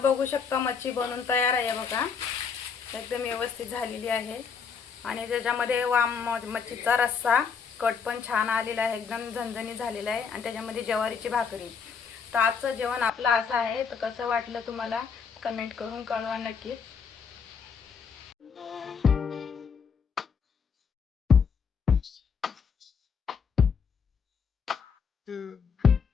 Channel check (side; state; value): right; quieter; 6.1 dB